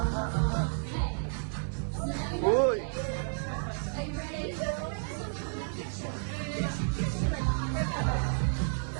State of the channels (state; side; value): silent; left; digital silence